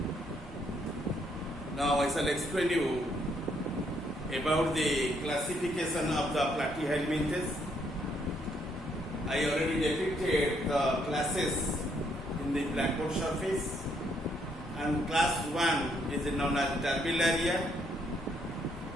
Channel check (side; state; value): both; normal; correlation 0.72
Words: Now I shall explain you about the classification of the platyhelminthes. I already depicted the classes in the blackboard surface, and class 1 is known as Turbellaria.